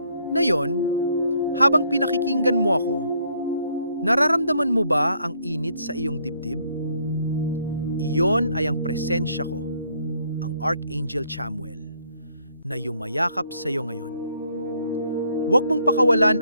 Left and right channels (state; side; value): inverted; both; correlation -0.69